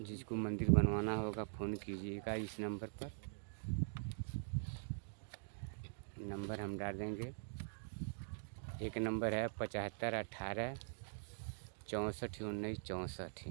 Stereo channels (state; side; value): silent; left; digital silence